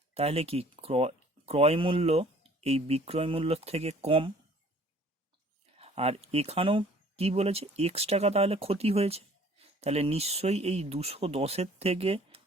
তাহলে কি ক্রয় মূল্য এই বিক্রয় মূল্যর থেকে কম, আর এখানেও কি বলেছে? এক্স টাকা তাহলে ক্ষতি হয়েছে, তাহলে নিশ্চয়ই এই 210-এর থেকে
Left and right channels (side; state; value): both; normal; correlation 0.53